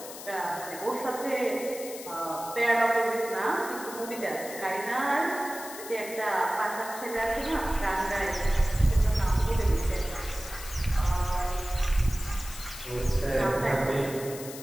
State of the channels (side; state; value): left; noise; hiss, 12 dB below the sound